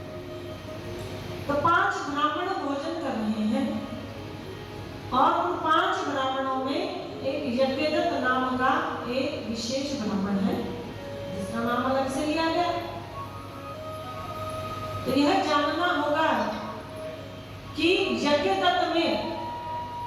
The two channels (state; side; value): identical; both; correlation 1.00